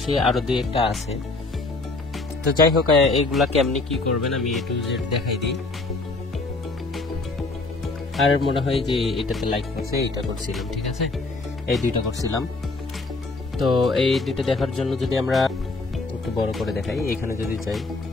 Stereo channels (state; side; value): quieter; right; 3.4 dB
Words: আরো 2-1টা আছে। তো যাই হোক, এইগুলা কেমনি কি করবেন আমি A to Z দেখাই দিই। আর মনে হয় যে এটাতে লাইক করছে, এটা করছিলাম, ঠিক আছে, এই 2টা করছিলাম। তো এই 2টা দেখার জন্য যদি আমরা একটু বড় করে দেখাই, এখানে যদি যাই,